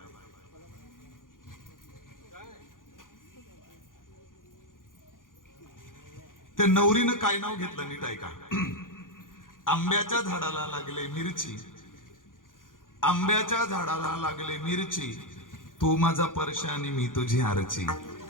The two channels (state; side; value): late; right; 0.89 ms